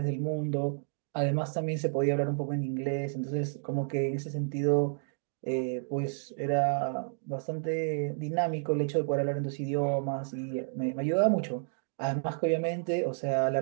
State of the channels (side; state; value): left; silent; digital silence